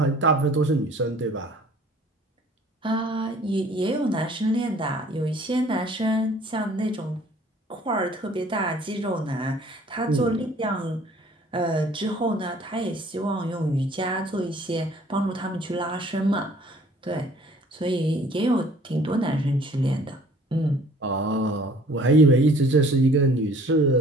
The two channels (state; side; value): normal; both; correlation 0.54